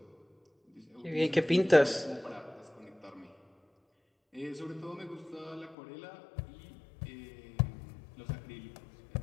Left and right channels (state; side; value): drops out; right; at 5.8 s